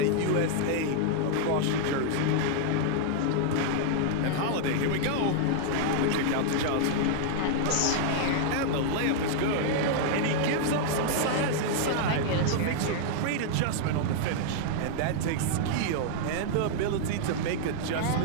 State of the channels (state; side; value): different; both; correlation -0.01